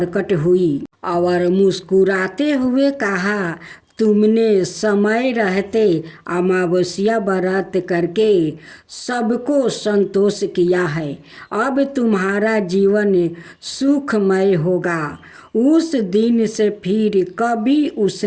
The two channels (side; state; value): both; identical; correlation 1.00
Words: हुई और मुस्कुराते हुए कहा, तुमने समय रहते अमावस्या व्रत करके सबको संतोष किया है। अब तुम्हारा जीवन सुखमय होगा। उस दिन से फिर कभी